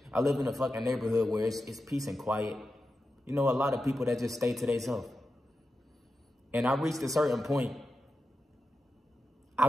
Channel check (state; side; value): normal; both; correlation 0.90